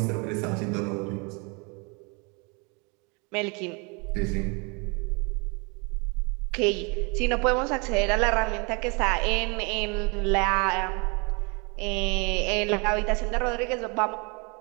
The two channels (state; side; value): quieter; left; 31.4 dB